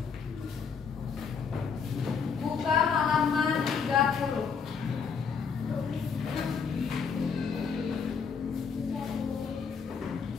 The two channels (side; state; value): right; quieter; 6.0 dB